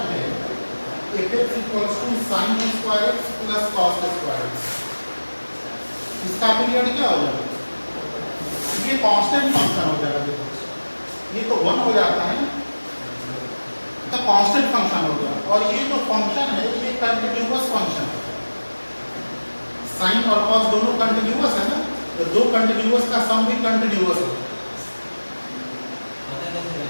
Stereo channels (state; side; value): inverted; both; correlation -1.00